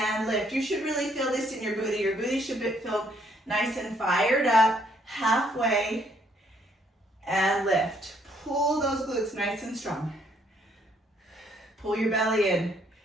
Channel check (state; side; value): normal; both; correlation 0.68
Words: lift. You should really feel this in your booty. Your booty should feel nice and fired up. Halfway, and lift. Pull those glutes nice and strong. Pull your belly in.